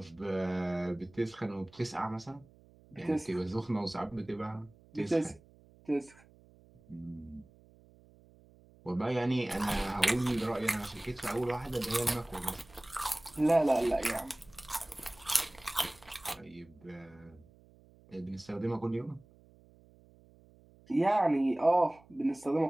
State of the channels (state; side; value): noise; right; hum, 26 dB below the sound